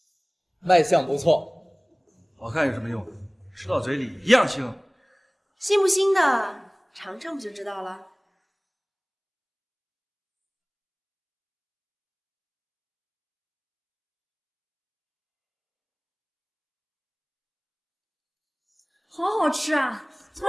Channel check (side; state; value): both; identical; correlation 1.00